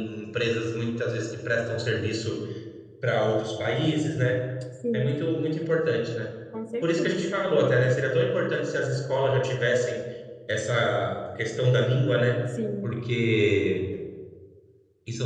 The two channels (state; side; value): identical; both; correlation 1.00